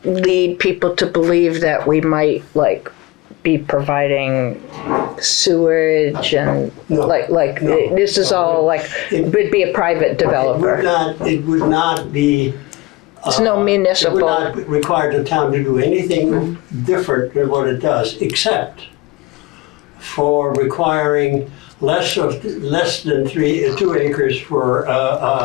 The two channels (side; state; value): right; quieter; 21.1 dB